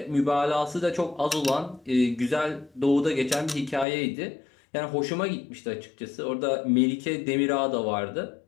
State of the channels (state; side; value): drops out; right; at 3.9 s